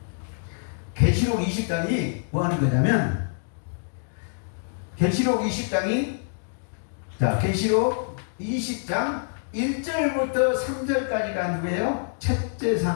계시록 20장이 뭐 하는 거냐면, 계시록 20장이, 자, 계시록 20장 1절부터 3절까지가 누구예요? 첫째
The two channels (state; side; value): silent; right; digital silence